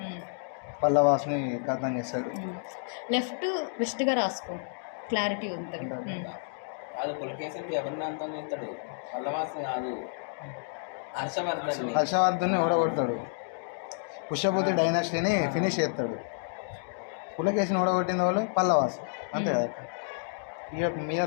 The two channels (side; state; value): right; silent; digital silence